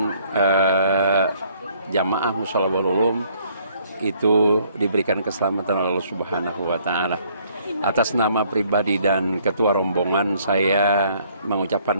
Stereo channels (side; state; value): both; inverted; correlation -0.63